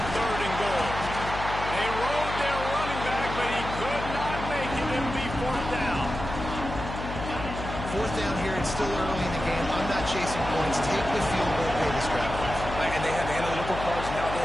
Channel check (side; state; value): left; noise; hum, 7 dB below the sound